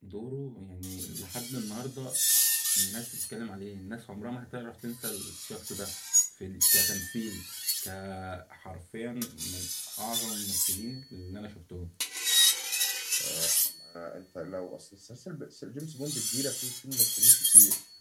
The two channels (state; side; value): identical; both; correlation 1.00